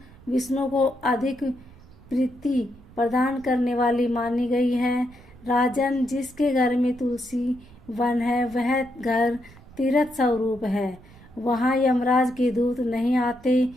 विष्णु को अधिक प्रीति प्रदान करने वाली मानी गई है। राजन, जिसके घर में तुलसी वन है वह घर तीर्थ स्वरूप है, वहाँ यमराज के दूत नहीं आते।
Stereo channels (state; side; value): noise; right; rumble, 23 dB below the sound